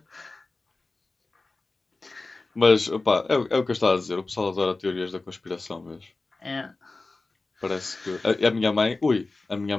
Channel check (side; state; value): right; quieter; 3.4 dB